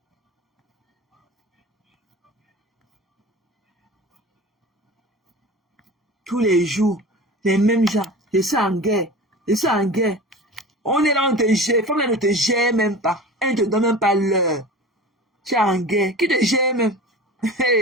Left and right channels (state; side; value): normal; both; correlation 0.35